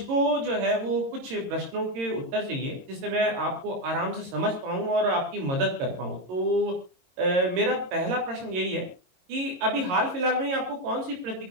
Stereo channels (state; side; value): late; left; 22 ms